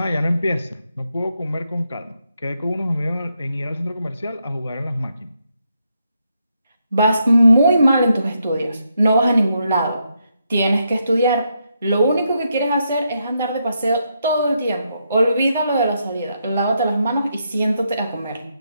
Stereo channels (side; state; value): both; inverted; correlation -0.80